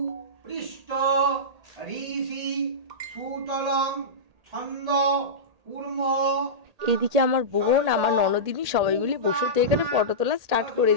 পৃষ্ঠ ঋষি সুতলং ছন্দ কুর্ম। এদিকে আমার বোন, আমার ননদিনী সবাই মিলে বসে তো এখানে ফটো তোলা স্টার্ট করে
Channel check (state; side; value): late; left; 1.8 ms